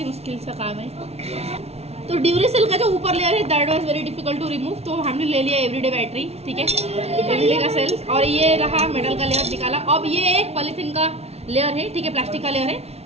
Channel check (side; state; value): left; late; 0.30 ms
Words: मुश्किल सा काम है, तो ड्यूरेसेल का जो ऊपर लेयर है that was very difficult to remove, तो हमने ले लिया एवरीडे बैटरी, ठीक है, एवरीडे का सेल, और ये रहा मेटल का लेयर निकाला। अब ये एक पॉलीथीन का लेयर है, ठीक है, प्लास्टिक का लेयर